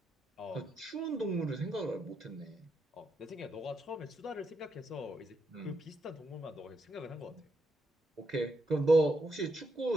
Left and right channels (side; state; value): both; normal; correlation 0.81